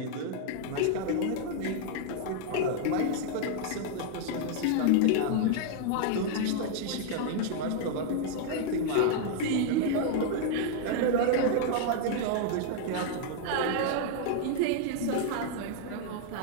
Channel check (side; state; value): both; different; correlation 0.00